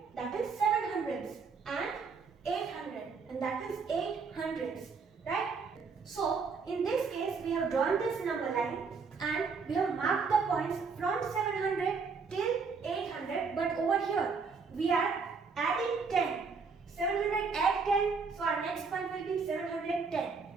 that is 700s, and 800, and that is 800s, right? So in this case we have drawn this number line and we have marked the points from 700 till 800, but over here we are adding 10. 700 add 10, so our next point will be 710.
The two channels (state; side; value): quieter; left; 5.0 dB